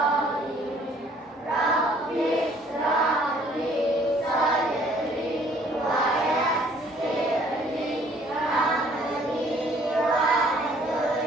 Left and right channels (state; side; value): normal; both; correlation 0.59